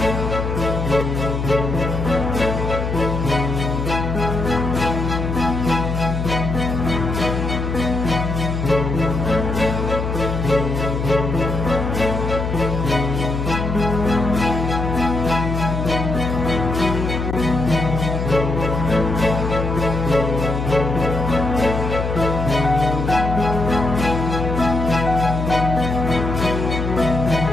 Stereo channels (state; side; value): noise; left; hum, 2 dB below the sound